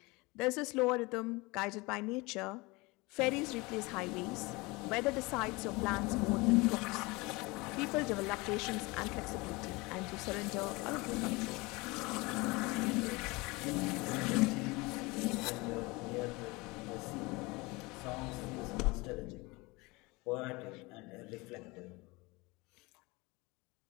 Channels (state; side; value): quieter; right; 24.3 dB